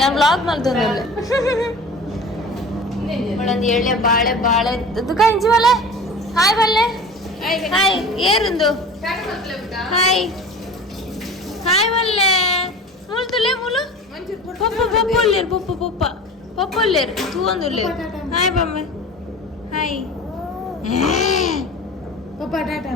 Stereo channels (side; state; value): both; normal; correlation 0.37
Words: ಬ್ಲಾಗ್ ಮಾಡ್ತೇನೆ. ಒಂದು ಎಳ್ಳೆ ಬಾಳೆ ಬಾಳೆ ದುಃಖ ಇಂಚಿ ಬಲ್ಲೆ ಹಾಯ್ ಬಲ್ಲೆ ಹಾಯ್ ಏರಿಂದು ಹಾಯ್ ಹಾಯ್ ಬಲ್ಲೆ ಮೂಲು ತುಲೆ ಮೂಲು ಪಪ್ಪ ಪಪ್ಪ ಒಲ್ಲೇರು ಪಪ್ಪ ಪಪ್ಪ ಪಪ್ಪ ಒಲ್ಲೇರು ತೂವೊಂದುಲ್ಲೇರು ಹಾಯ್ ಬಮ್ಮೆ ಹಾಯ್ ಪಪ್ಪ ಟಾಟಾ